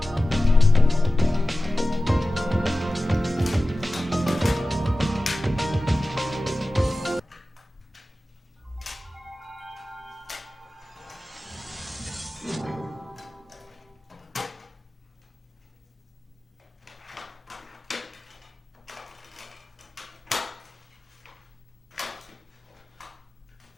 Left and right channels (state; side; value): normal; both; correlation 0.96